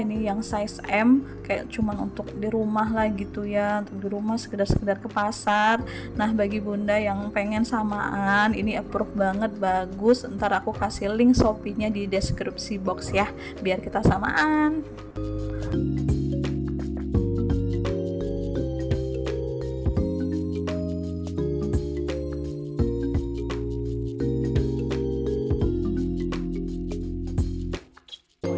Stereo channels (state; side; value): identical; both; correlation 1.00